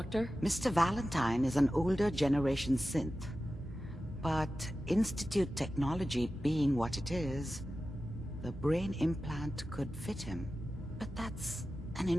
Mr. Valentine is an older generation synth. But Institute technology being what it is, the brain implant could fit him. But that's an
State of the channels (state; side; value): normal; both; correlation 0.94